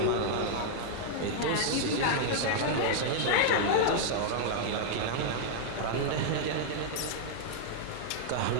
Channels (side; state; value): both; different; correlation -0.01